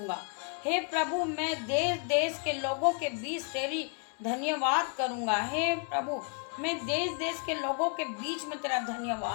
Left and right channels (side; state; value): right; quieter; 38.9 dB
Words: हे प्रभु, मैं देश देश के लोगों के बीच तेरी धन्यवाद करूँगा। हे प्रभु, मैं देश देश के लोगों के बीच में तेरा